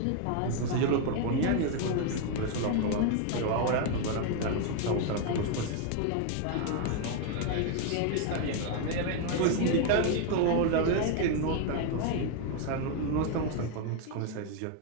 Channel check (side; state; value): both; different; correlation 0.01